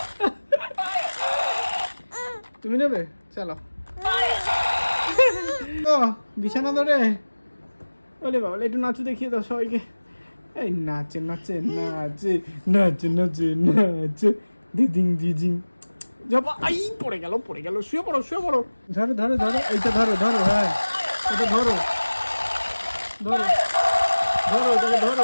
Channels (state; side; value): inverted; both; correlation -1.00